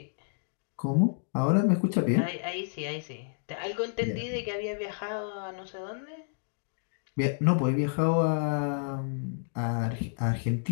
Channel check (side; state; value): right; silent; digital silence